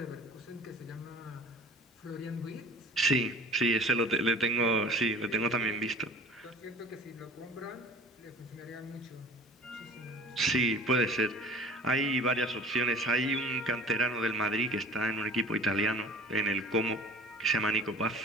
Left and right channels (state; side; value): normal; both; correlation 0.44